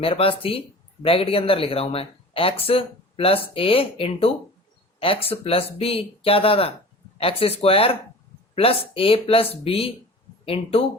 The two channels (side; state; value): both; normal; correlation 0.40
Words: पास थी ब्रैकेट के अंदर लिख रहा हूं मैं, x plus a into x plus b, क्या था x square plus a plus B